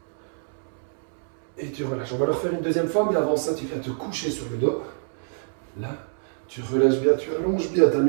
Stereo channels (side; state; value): left; silent; 61 dB below the other